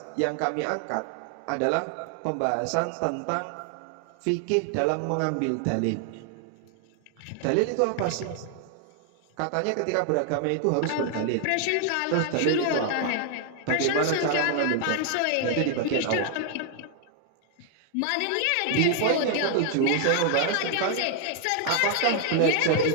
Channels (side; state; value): both; different; correlation 0.00